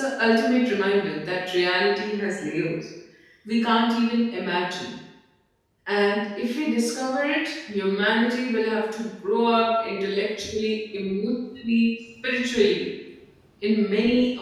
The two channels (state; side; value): identical; both; correlation 1.00